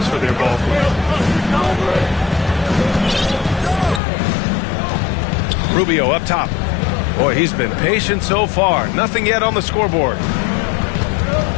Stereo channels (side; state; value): right; drops out; at 4.0 s